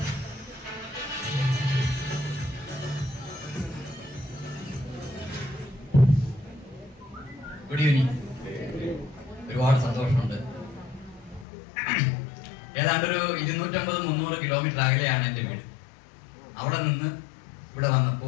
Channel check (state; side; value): drops out; right; at 11.5 s